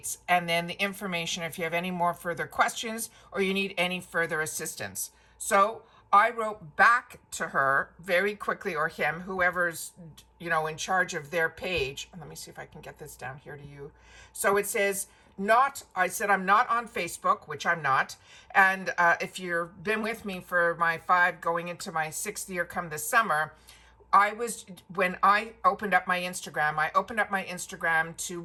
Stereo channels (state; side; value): identical; both; correlation 1.00